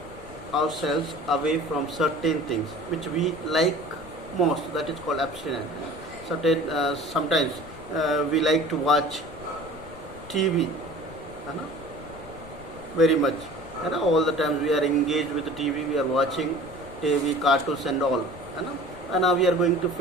ourselves away from certain things which we like most. That is called abstinence. Sometimes we like to watch TV, very much. All the times we are engaged with the TV, we are watching TV, cartoons and all. And now we are going to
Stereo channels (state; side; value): noise; left; rumble, 18 dB below the sound